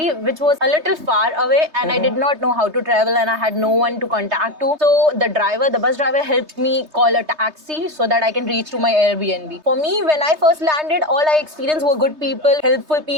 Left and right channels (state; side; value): late; left; 3.3 ms